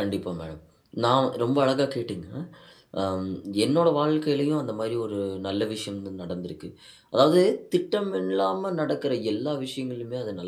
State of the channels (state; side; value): identical; both; correlation 1.00